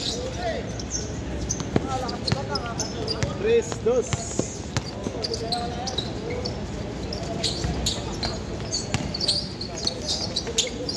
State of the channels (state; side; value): identical; both; correlation 1.00